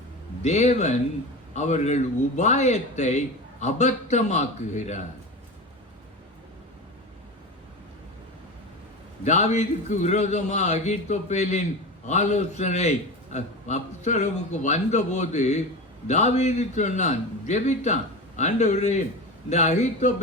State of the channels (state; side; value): normal; both; correlation 0.26